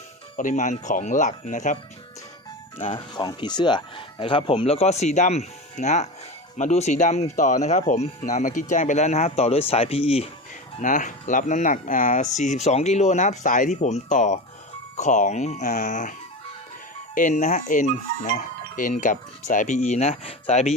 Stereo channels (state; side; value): normal; both; correlation 0.25